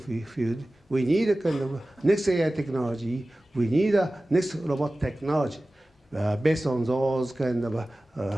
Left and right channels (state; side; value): normal; both; correlation 0.96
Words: field, we need a kind of next AI technology, we need a next robot technology based on those kind of